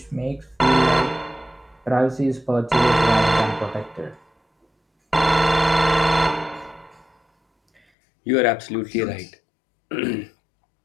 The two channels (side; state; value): right; drops out; at 7.8 s